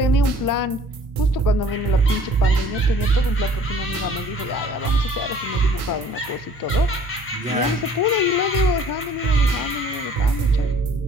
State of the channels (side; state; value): both; normal; correlation 0.53